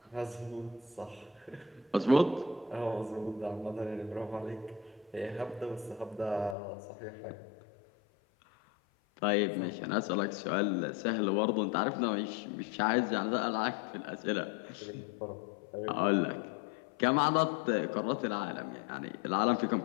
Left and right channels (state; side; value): drops out; right; at 6.6 s